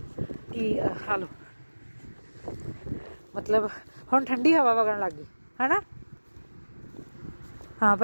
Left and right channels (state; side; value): inverted; both; correlation -1.00